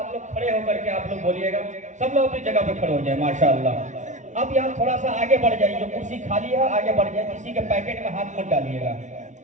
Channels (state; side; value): late; left; 0.36 ms